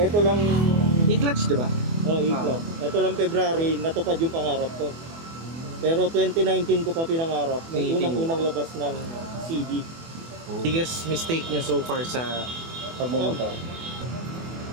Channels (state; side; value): late; left; 24 ms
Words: ito lang, E-clutch, di ba? E-clutch. Ito lang February, natupad yung pangarap ko. Pero 2019 ko pa pinangarap, may unang labas ng CD. Biggest mistake niyo so far sa pagmumotor?